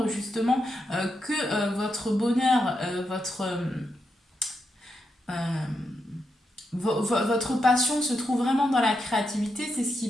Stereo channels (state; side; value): normal; both; correlation 0.84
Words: justement que votre bonheur, votre passion se trouve vraiment dans la créativité, c'est ce qui